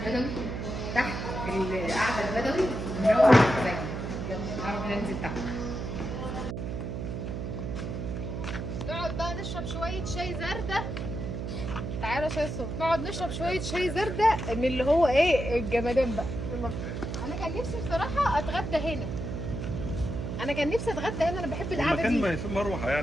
تحت في القعده البدوي ونروح ازاي. يلا ننزل تحت نقعد بقى نشرب شويه شاي زردة. تعالى يا شاي صوت، نقعد نشرب شويه شاي زردة من اللي هو ايه الجمدان بقى. انا كان نفسي بصراحه اتغدى هنا، انا كان نفسي اتغدى هنا، انا بحب القعده دي، المكان في مروحه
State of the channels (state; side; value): noise; right; hum, 4 dB below the sound